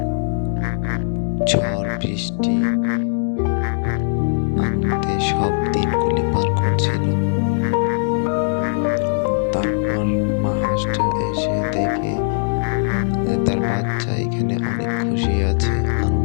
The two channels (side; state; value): right; silent; digital silence